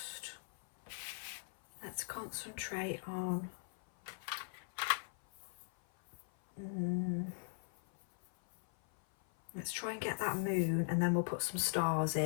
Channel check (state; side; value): silent; right; 51 dB below the other